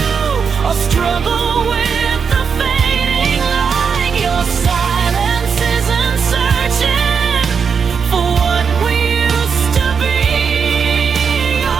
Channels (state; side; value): quieter; left; 6.2 dB